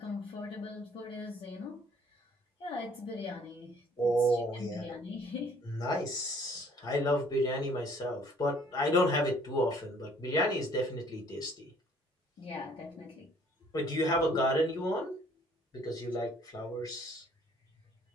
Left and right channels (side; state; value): both; normal; correlation 0.59